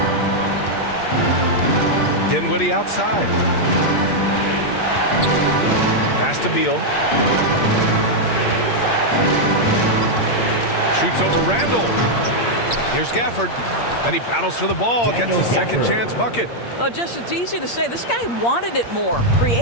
Dinwiddie outside. Pass to Beal. Shoots over Randall. Here's Gafford. And he battles for the ball, gets the second chance bucket. Well, just it's easy to say. This guy wanted it more,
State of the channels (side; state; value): right; late; 8.6 ms